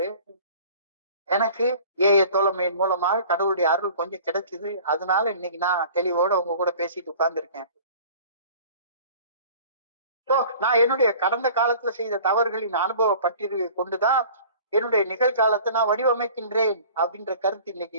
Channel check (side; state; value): both; inverted; correlation -0.45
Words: எனக்கு ஏய தோழமையின் மூலமாக கடவுளுடைய அருள் கொஞ்சம் கிடைச்சது, அதனால இன்னைக்கு நான் தெளிவோட உங்க கூட பேசிட்டு உட்கார்ந்து இருக்கேன். நான் என்னுடைய கடந்த காலத்துல செய்த தவறுகளின் அனுபவ பட்டியலை கொண்டுதான் என்னுடைய நிகழ்காலத்தை நான் வடிவமைக்கின்றேன் அப்படின்ற கருத்து